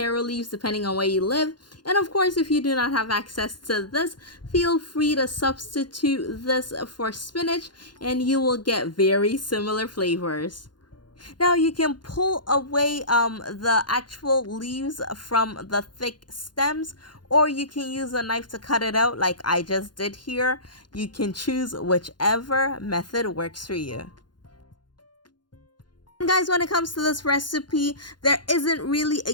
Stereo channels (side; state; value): right; late; 0.71 ms